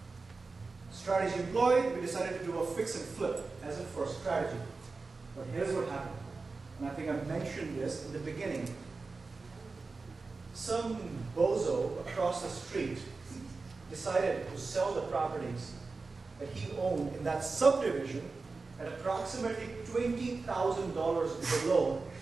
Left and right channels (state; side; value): quieter; left; 4.0 dB